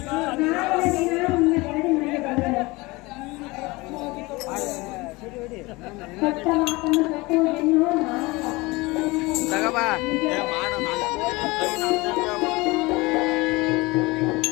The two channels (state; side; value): quieter; right; 23.1 dB